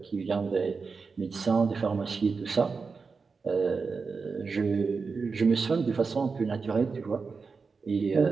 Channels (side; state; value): left; quieter; 4.8 dB